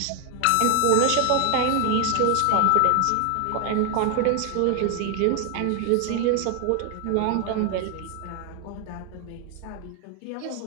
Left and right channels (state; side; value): different; both; correlation 0.01